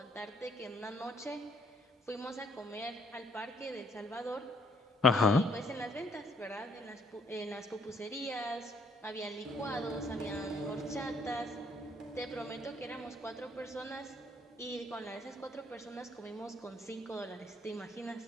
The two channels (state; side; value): normal; both; correlation 0.66